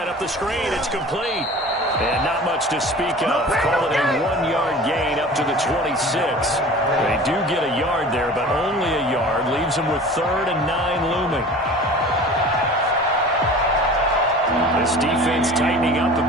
up the screen. It's complete. And not much to speak of. Call it a 1-yard gain up to the 26. They do get a yard there, but only a yard. Leaves them with 3rd and 9 looming. This defense tightening up a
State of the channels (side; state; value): both; normal; correlation 0.41